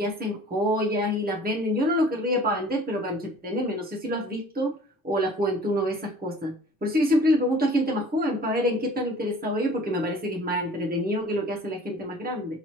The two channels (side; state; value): both; normal; correlation 0.47